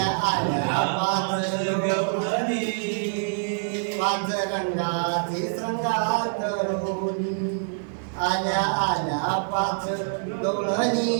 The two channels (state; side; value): silent; left; digital silence